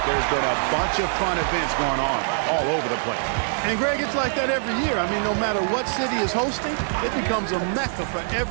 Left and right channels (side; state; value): left; silent; digital silence